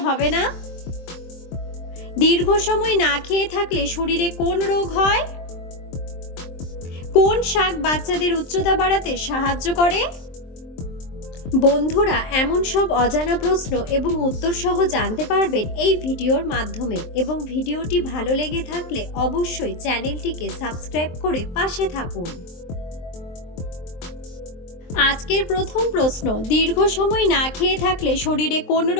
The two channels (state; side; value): late; right; 23 ms